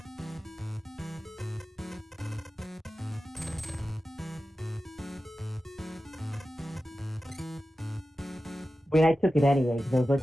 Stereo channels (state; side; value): normal; both; correlation 0.93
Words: I mean, I took it anyway because I was like,